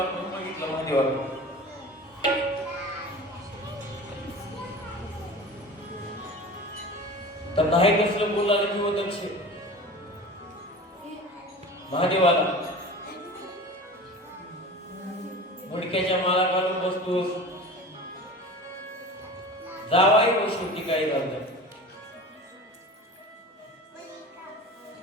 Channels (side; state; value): both; normal; correlation 0.36